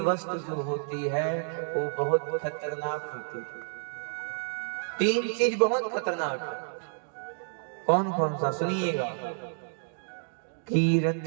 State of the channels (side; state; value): left; silent; digital silence